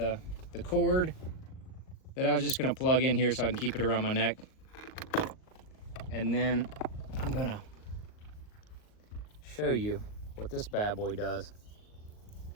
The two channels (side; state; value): right; late; 38 ms